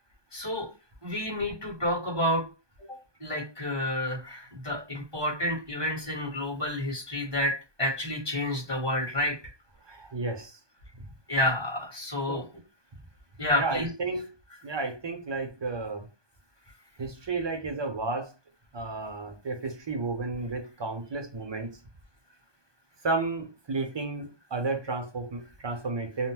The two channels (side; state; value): left; late; 1.2 ms